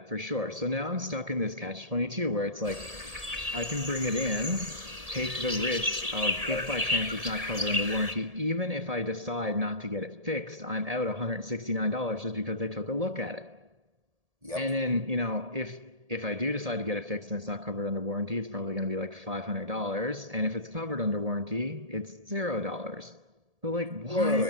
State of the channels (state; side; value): late; left; 1.7 ms